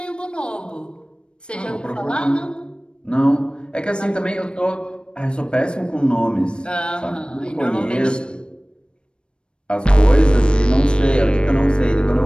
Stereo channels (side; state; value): right; late; 0.053 ms